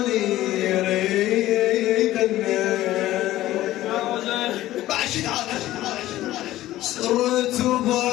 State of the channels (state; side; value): quieter; right; 15.2 dB